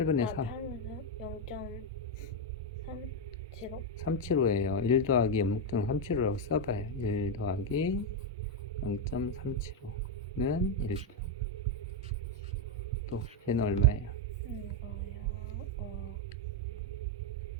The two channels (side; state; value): both; normal; correlation 0.04